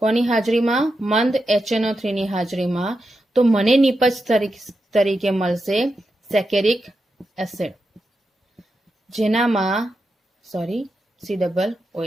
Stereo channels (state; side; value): normal; both; correlation 0.88